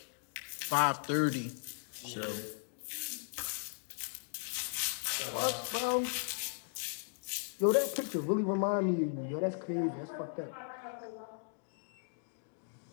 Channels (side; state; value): right; silent; digital silence